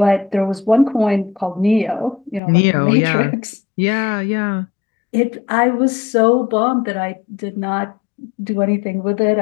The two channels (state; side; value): drops out; right; at 2.4 s